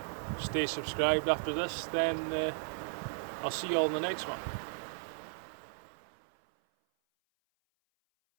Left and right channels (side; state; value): left; silent; 54 dB below the other